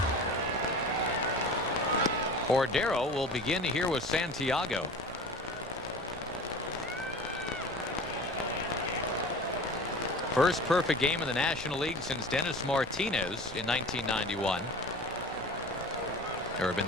Cordero will begin here with Santiago. First perfect game in the National League since Dennis Martinez in 1991. There have been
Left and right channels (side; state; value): both; normal; correlation 0.37